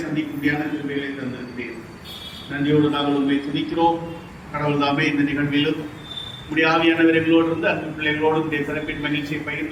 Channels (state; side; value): identical; both; correlation 1.00